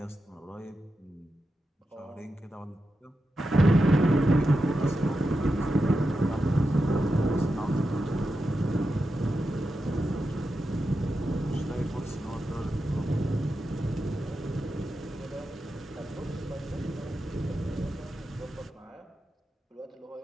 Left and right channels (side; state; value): both; normal; correlation 0.89